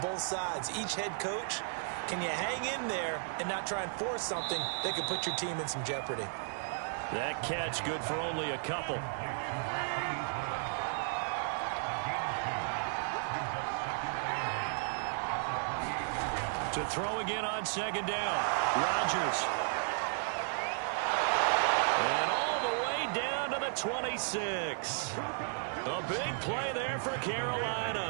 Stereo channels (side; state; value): left; silent; digital silence